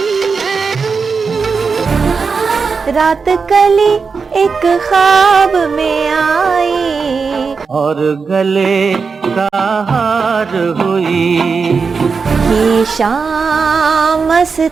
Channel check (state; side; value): quieter; left; 5.1 dB